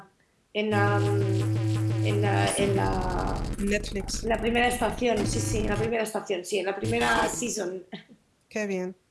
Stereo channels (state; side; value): identical; both; correlation 1.00